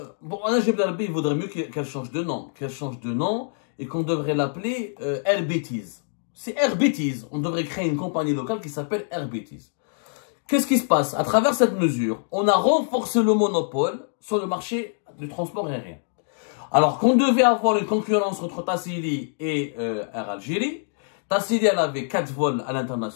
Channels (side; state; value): right; silent; digital silence